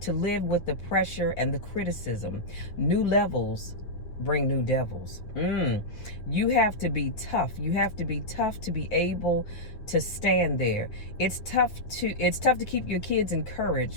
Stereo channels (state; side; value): late; right; 9.4 ms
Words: live with the pressure and the criticism. New levels bring new devils. You have to be tough. You have to be tough to be able to stand there. It's tough to keep your kids encouraged